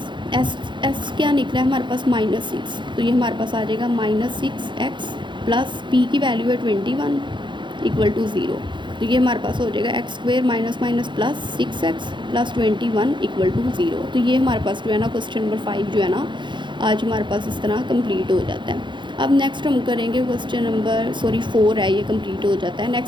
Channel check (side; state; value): left; late; 0.23 ms